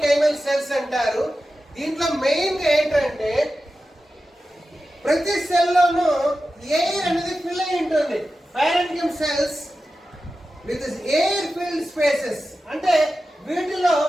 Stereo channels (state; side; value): normal; both; correlation 0.93